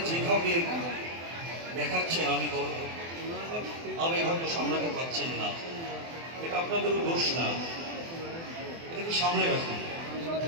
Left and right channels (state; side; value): late; left; 24 ms